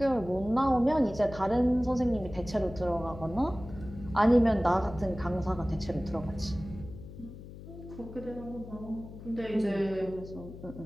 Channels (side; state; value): left; noise; hum, 14 dB below the sound